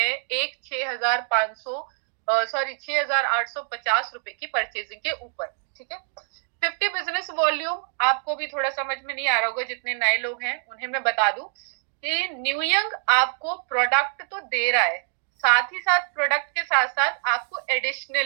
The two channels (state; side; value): silent; left; digital silence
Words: एक 6,850 रुपए की परचेजिंग के ऊपर। ठीक है, 50 बिजनेस वॉल्यूम आपको भी थोड़ा समझ में नहीं आ रहा होगा, जितने नए लोग हैं उन्हें मैं बता दूं कि न्यूयंग आपको प्रोडक्ट तो दे रहा है, साथ ही साथ प्रोडक्ट के साथ साथ आपको